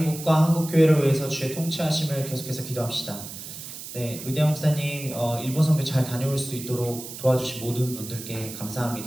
한국교회를 위해서 주의 통치하심을 계속해서 기도합시다. 네, 루디아 목사님 일본 선교 잘 다녀올 수 있도록 도와주신 모든 분들께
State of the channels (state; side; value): noise; right; hiss, 11 dB below the sound